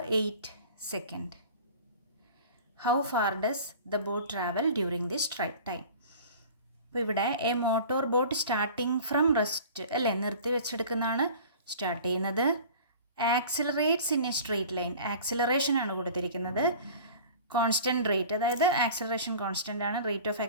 8 second. How far does the boat travel during this time? അപ്പോൾ ഇവിടെ A motor boat starting from rest അല്ലേ, നിർത്തി വെച്ചെടുക്കുന്നതാണ് start ചെയ്യുന്നത്. Accelerates in A straight line, acceleration ആണ് കൊടുത്തിരിക്കുന്നത്. കോൺസ്റ്റൻറ്റ് റേറ്റ്, അതായത് ആക്സിലറേഷൻ കോൺസ്റ്റൻ്റ് ആണ്, റേറ്റ് ഓഫ്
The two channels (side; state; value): both; inverted; correlation -0.42